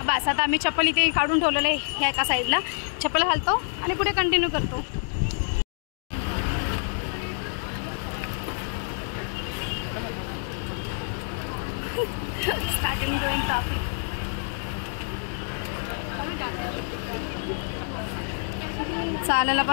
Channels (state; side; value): silent; right; 60 dB below the other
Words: बस आता आम्ही चप्पल इथे काढून ठेवलेलं आहे, ह्या एका साईडला चप्पल घालतो आणि पुढे कंटिन्यू करतो। चालायला